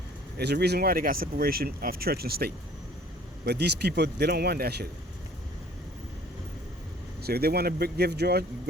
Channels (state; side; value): normal; both; correlation 0.53